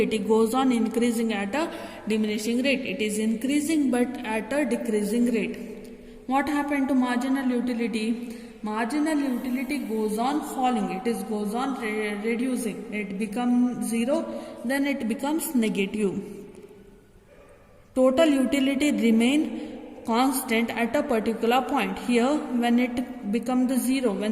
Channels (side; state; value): both; identical; correlation 1.00